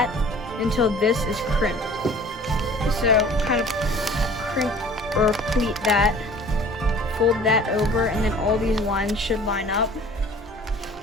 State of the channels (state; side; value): normal; both; correlation 0.48